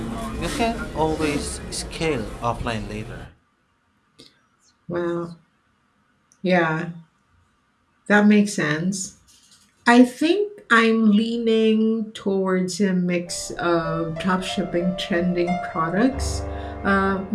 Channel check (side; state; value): both; identical; correlation 1.00